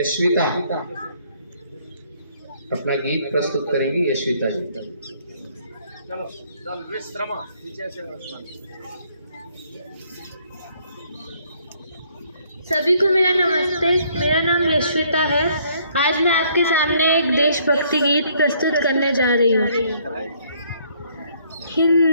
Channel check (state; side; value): inverted; both; correlation -0.65